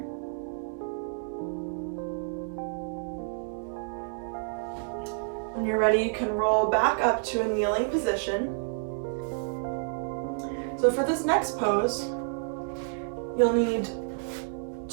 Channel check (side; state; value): left; silent; 58 dB below the other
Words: When you're ready, you can roll back up to a kneeling position. So for this next pose, you'll need